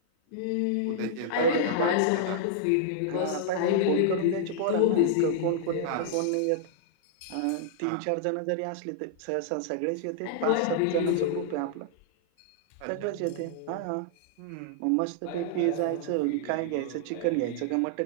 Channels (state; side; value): different; both; correlation -0.01